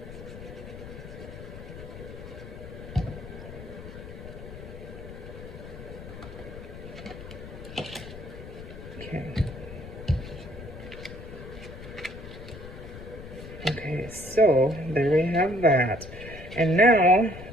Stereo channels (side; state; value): left; noise; rumble, 12 dB below the sound